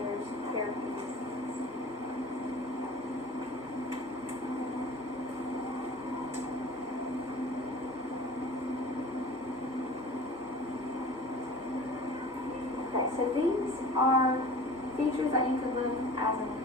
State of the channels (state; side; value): normal; both; correlation 0.41